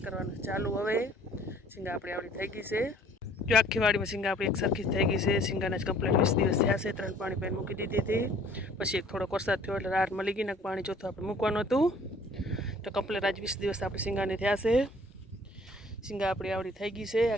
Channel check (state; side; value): normal; both; correlation 0.55